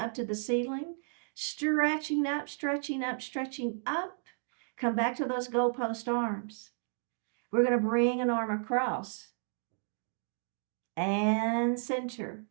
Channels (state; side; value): silent; left; digital silence